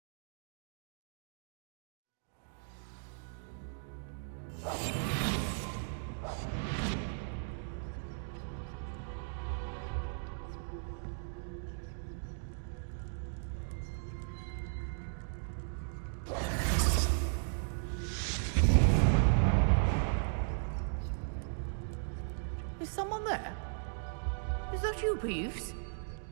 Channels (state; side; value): silent; left; digital silence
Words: Is someone there? Is that you, Peeves?